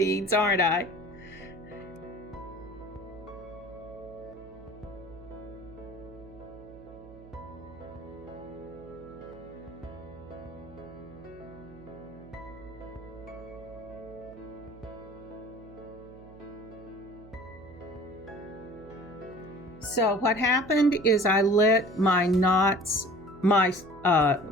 aren't I? So what happened is I let my knots, my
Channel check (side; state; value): right; noise; hum, 19 dB below the sound